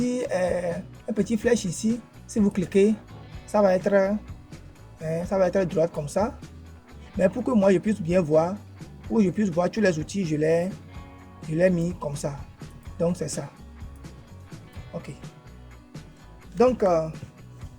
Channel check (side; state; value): both; identical; correlation 1.00